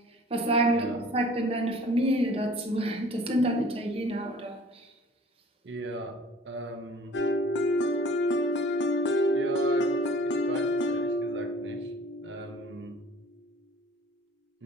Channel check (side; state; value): both; normal; correlation 0.49